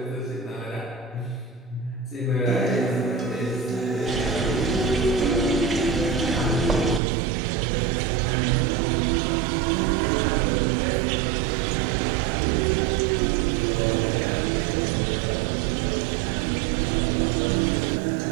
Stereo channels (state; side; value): drops out; left; at 7.0 s